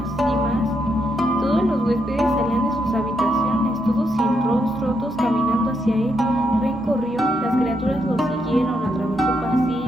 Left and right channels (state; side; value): normal; both; correlation 0.79